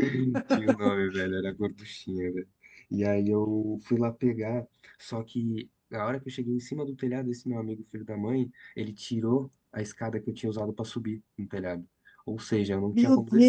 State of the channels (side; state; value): both; identical; correlation 1.00